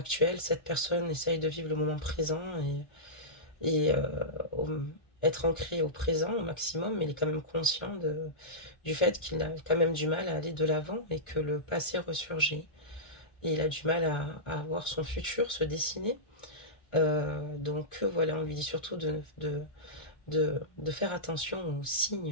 cette personne essaye de vivre le moment présent et au- être ancré au présent au maximum, mais il est quand même conscient du fait qu'il a quand même du mal à aller de l'avant et que le passé ressurgit. Et il a du mal à voir son futur se dessiner. Donc voilà, on lui dit surtout de faire attention aux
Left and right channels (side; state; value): right; late; 1.4 ms